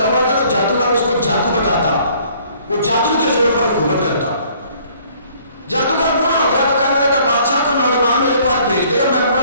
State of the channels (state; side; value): inverted; both; correlation -0.59